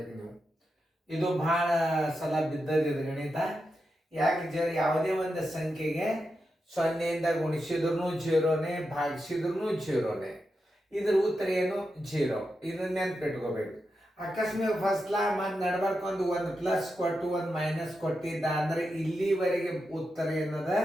ನೀವು. ಇದು ಬಹಳ ಸಲ ಬಿದ್ದದಿದೆ ಗಣಿತ. ಯಾಕೆ ಯಾವುದೇ ಒಂದು ಸಂಖ್ಯೆಗೆ 0ಯಿಂದ ಗುಣಿಸಿದ್ರು 0ನೇ, ಭಾಗಿಸಿದ್ರು 0ನೇ. ಇದ್ರ ಉತ್ತರ ಏನು? 0. ಇದನ್ನ ನೆನ್ಪಿಟ್ಕೋಬೇಕು. ಅಕಸ್ಮಾತ್ ಫಸ್ಟ್ಲ ಮತ್ತು ನಡ್ಬರ್ಕ್ ಒಂದು ಪ್ಲಸ್ ಕೊಟ್ಟು ಒಂದು ಮೈನಸ್ ಕೊಟ್ಟಿದ್ದ ಅಂದ್ರೆ ಇಲ್ಲಿವರೆಗೆ ಉತ್ತರ ಏನದ?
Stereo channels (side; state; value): both; normal; correlation 0.88